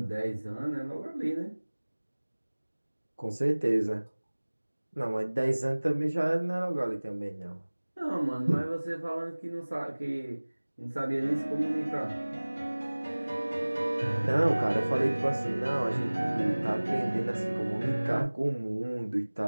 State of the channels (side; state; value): both; inverted; correlation -1.00